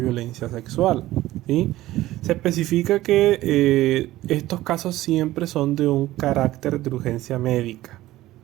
sexual, ¿sí? Se especifica que estos casos siempre son de un carácter de urgencia médica,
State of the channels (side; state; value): left; quieter; 16.0 dB